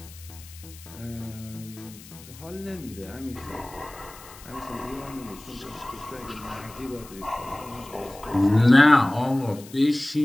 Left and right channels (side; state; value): left; noise; hiss, 19 dB below the sound